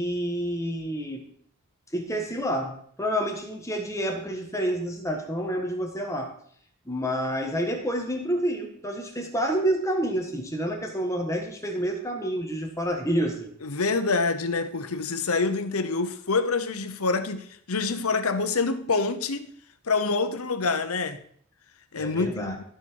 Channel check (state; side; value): normal; both; correlation 0.15